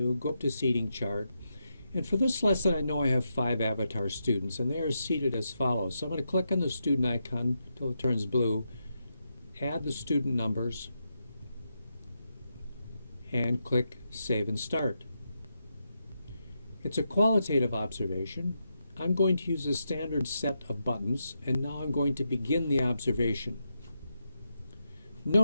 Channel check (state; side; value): inverted; both; correlation -0.84